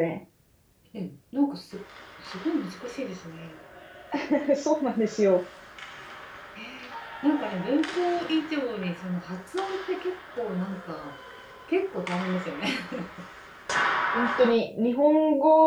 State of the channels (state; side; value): identical; both; correlation 1.00